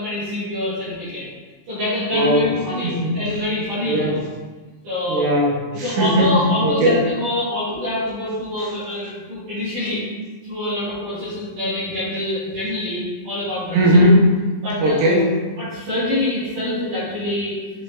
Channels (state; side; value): late; left; 20 ms